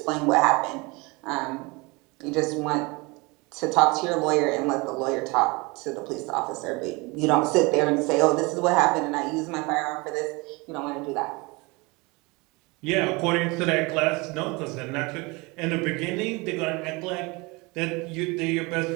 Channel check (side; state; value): left; quieter; 25.9 dB